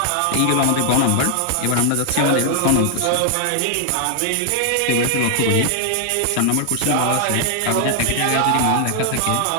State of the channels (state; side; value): different; both; correlation 0.00